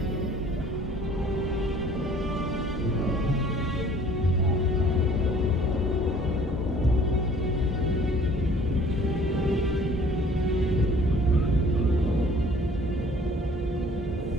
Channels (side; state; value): both; normal; correlation 0.53